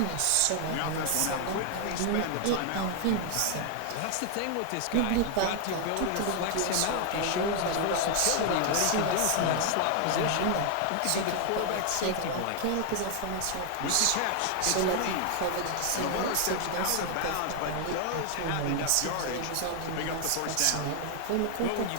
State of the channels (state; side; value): different; both; correlation 0.00